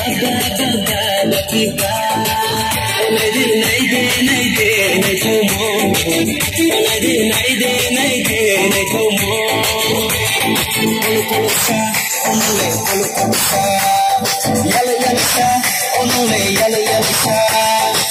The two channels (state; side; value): identical; both; correlation 1.00